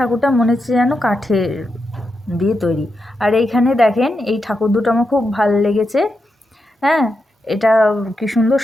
মনে হচ্ছে যেন কাঠের দিয়ে তৈরি। আর এইখানে দেখেন, এই ঠাকুর দুটো আমার খুব ভালো লেগেছে। হ্যাঁ, এটা কি সুন্দর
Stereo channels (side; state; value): both; normal; correlation 0.86